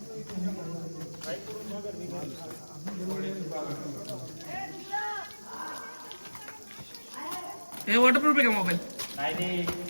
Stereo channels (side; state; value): both; inverted; correlation -1.00